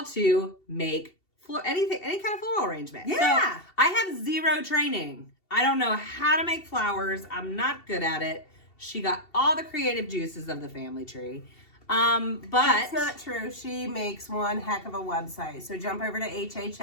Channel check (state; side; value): late; right; 2.7 ms